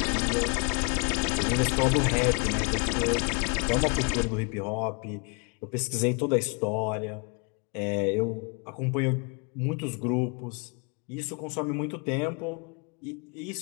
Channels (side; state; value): right; quieter; 34.3 dB